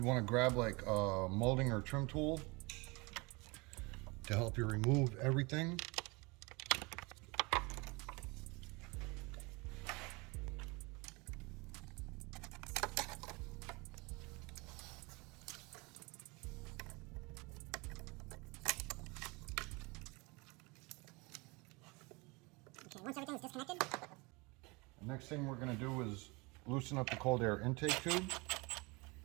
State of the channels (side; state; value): left; quieter; 26.7 dB